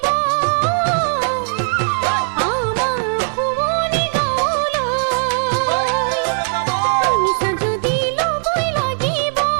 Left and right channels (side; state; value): left; silent; digital silence